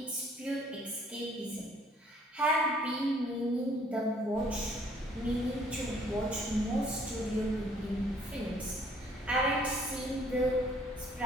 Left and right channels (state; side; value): normal; both; correlation 0.61